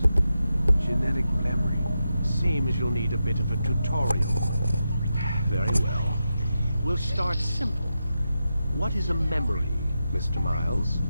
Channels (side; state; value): both; inverted; correlation -0.88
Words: genetic memory. Seems you'll need a bit of a tutorial. Very well. We'll start simple. What is a memory, Mr. Miles?